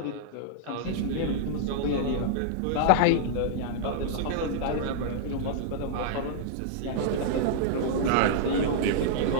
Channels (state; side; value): different; both; correlation -0.02